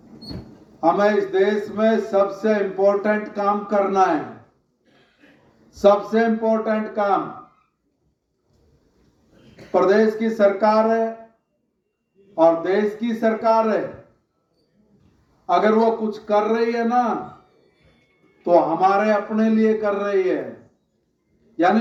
हमें इस देश में सबसे इंपॉर्टेंट काम करना है। सबसे इंपॉर्टेंट काम प्रदेश की सरकार है और देश की सरकार है। अगर वो कुछ कर रही है ना, तो हमारे अपने लिए कर रही है।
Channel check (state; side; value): identical; both; correlation 1.00